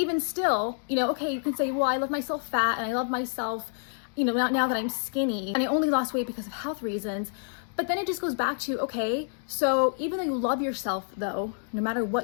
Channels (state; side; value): silent; right; digital silence